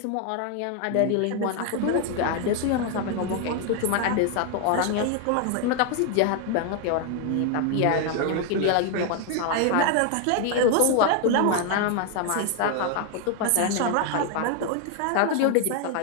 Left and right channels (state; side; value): different; both; correlation 0.01